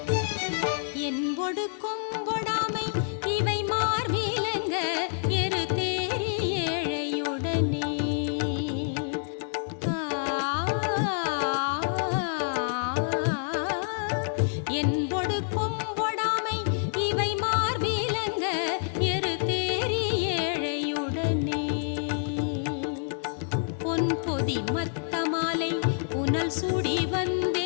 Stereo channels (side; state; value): right; silent; digital silence